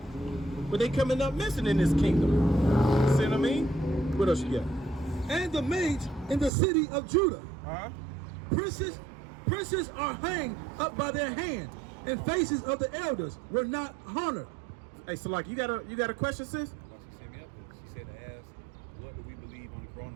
But they coming up missing in this kingdom. You see what I mean? What else you got? And the maids in the city of Judah. Princes are hanged up by their hand, and faces of the elders were not honored. Hey, so like you got a question, sis? She sent me up there. She said to ask, what do we believe on the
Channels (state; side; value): drops out; left; at 6.5 s